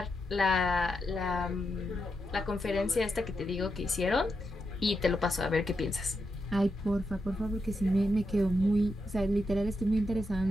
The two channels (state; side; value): normal; both; correlation 0.85